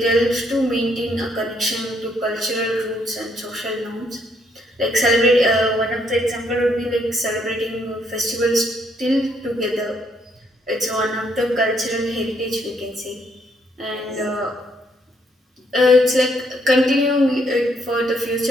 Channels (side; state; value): both; normal; correlation 0.71